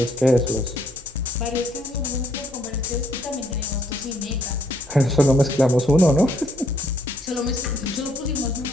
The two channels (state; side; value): normal; both; correlation 0.68